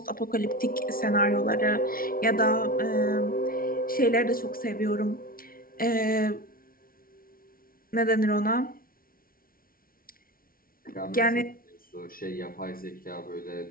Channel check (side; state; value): right; late; 0.43 ms